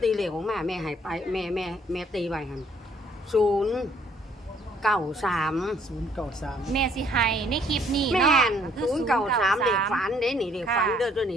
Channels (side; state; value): both; normal; correlation 0.63